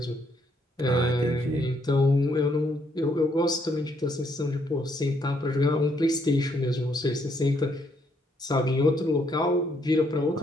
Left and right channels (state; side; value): normal; both; correlation 0.72